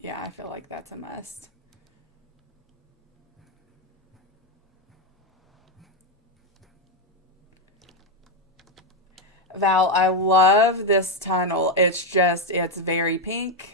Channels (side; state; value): both; normal; correlation 0.05